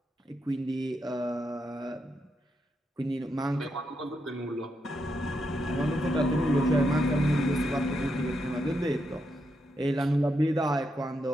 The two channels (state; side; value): normal; both; correlation 0.82